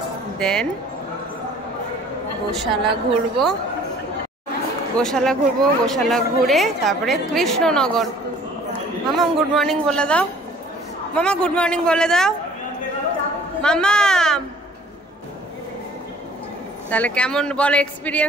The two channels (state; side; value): normal; both; correlation 0.53